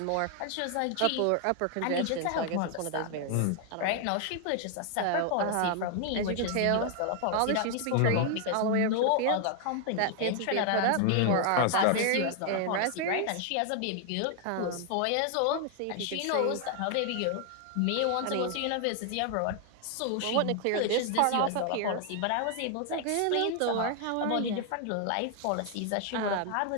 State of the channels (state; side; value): different; both; correlation 0.00